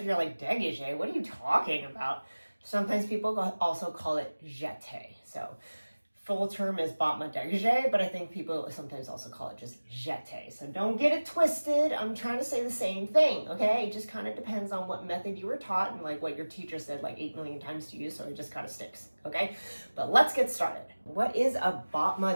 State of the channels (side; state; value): both; inverted; correlation -1.00